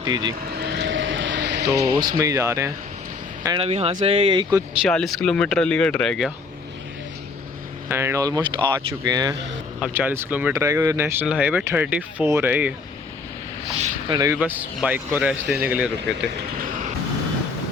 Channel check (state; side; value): quieter; right; 4.3 dB